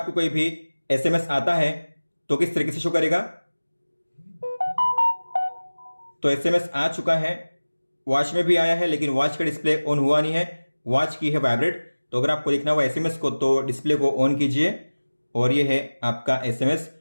कोई भी एसएमएस आता है तो किस तरीके से शो करेगा। तो एसएमएस आ चुका है, वॉच में भी आया है, लेकिन वॉच का डिस्प्ले ऑन हुआ नहीं है, वॉच की है वाइब्रेट। तो अगर आपको देखना हुआ एसएमएस को तो डिस्प्ले को ऑन कीजिए और ये है आपका एसएमएस।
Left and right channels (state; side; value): inverted; both; correlation -1.00